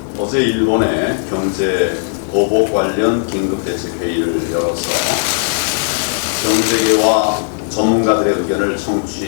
어제 일본의 경제 보복 관련 긴급대책회의를 열어서 경제계와 전문가들의 의견을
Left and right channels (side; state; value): right; silent; 59 dB below the other